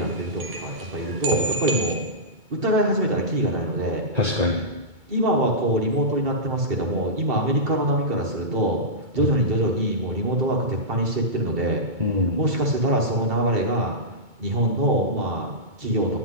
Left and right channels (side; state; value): left; late; 2.2 ms